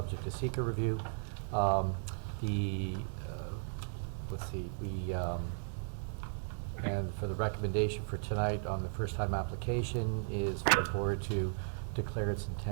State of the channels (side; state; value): left; silent; digital silence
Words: to seeker review. Let's see, and for the recommendation for tonight on the first time application is for the board to declare its